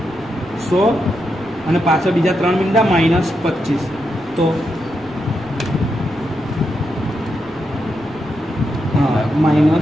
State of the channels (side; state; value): right; noise; rumble, 25 dB below the sound